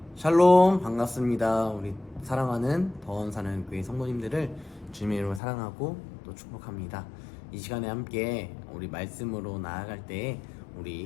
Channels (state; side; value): drops out; right; at 5.4 s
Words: 샬롬, 반갑습니다. 우리 사랑하는 더원사는 교회 성도님들을 주님의 이름으로 사랑하고 또 축복합니다. 이 시간에 함께 우리 말씀으로 나아갈 때